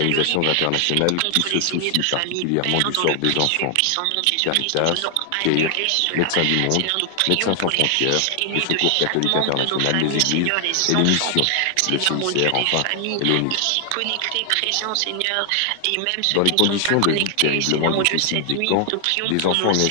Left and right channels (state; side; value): different; both; correlation 0.00